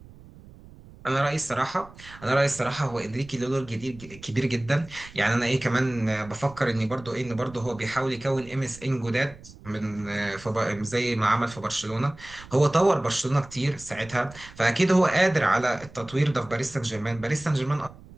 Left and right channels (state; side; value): noise; right; rumble, 20 dB below the sound